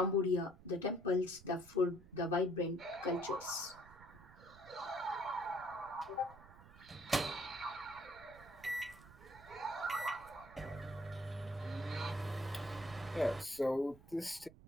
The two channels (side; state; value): right; noise; rumble, 20 dB below the sound